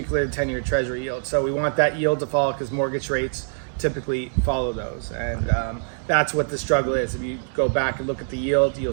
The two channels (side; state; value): left; silent; digital silence